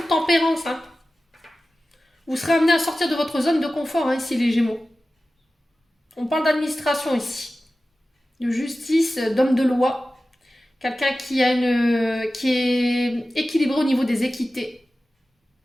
tempérance. Hein. Vous serez amené à sortir de votre zone de confort, hein, ici, les Gémeaux. On parle d'administration ici. De justice, d'homme de loi. Quelqu'un qui est équilibré au niveau des équités.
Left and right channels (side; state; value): both; normal; correlation 0.95